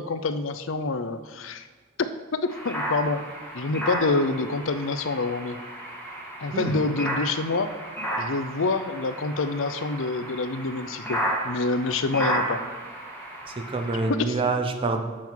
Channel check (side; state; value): both; normal; correlation 0.07